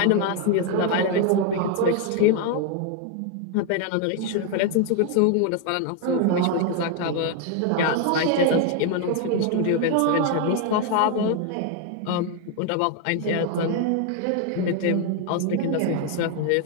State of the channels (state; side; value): different; both; correlation 0.01